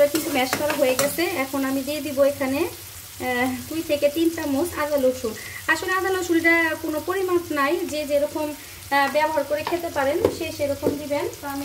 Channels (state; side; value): identical; both; correlation 1.00